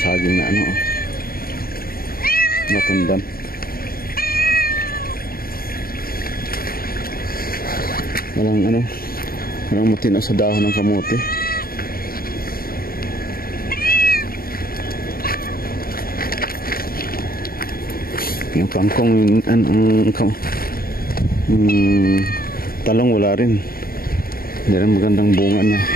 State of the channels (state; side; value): late; right; 0.43 ms